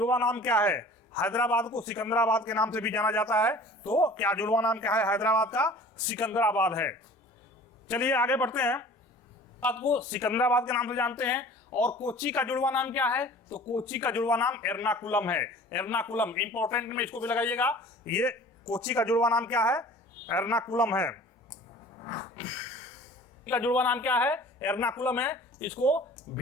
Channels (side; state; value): both; normal; correlation 0.45